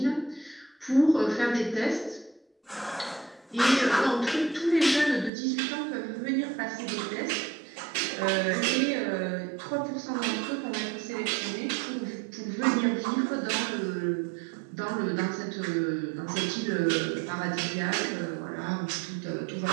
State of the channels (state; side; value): drops out; left; at 5.3 s